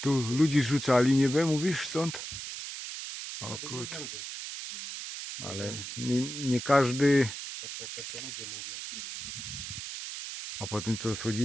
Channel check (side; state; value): right; noise; hiss, 8 dB below the sound